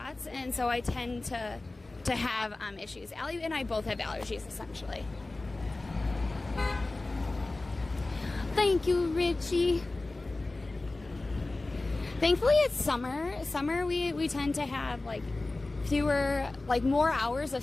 and so I tend to have issues. Allie and I both have allergies, essentially. Thank you, Richie. Thankfully, it's summer. Summer, we tend to have like more hours of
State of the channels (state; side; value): quieter; right; 3.1 dB